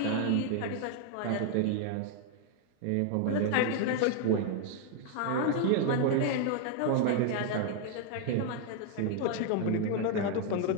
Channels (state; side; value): different; both; correlation 0.00